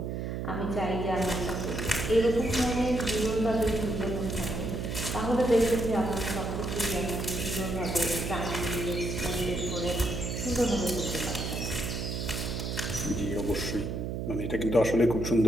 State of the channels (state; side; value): noise; right; hum, 3 dB below the sound